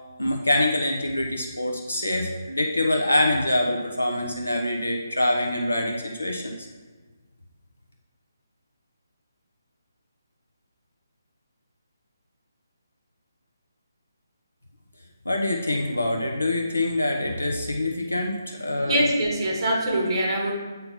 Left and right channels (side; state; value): both; inverted; correlation -0.83